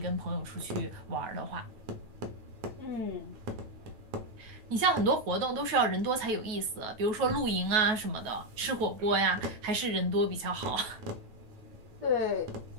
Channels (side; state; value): left; late; 9.3 ms